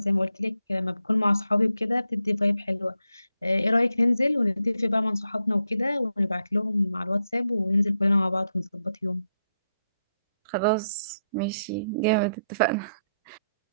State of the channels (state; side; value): inverted; both; correlation -0.82